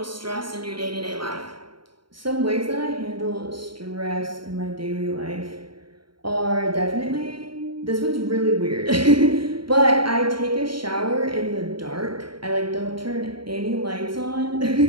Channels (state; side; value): late; left; 0.73 ms